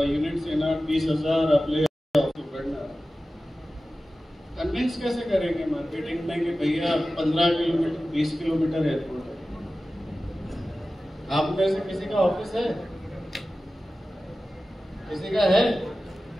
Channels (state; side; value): normal; both; correlation 0.95